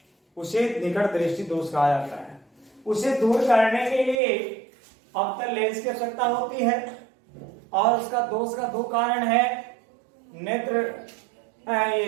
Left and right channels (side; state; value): left; drops out; at 4.2 s